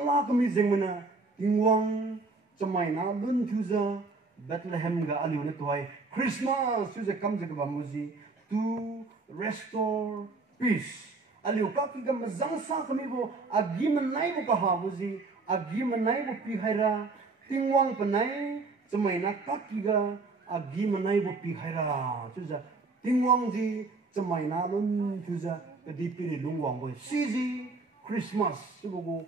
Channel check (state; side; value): quieter; left; 3.8 dB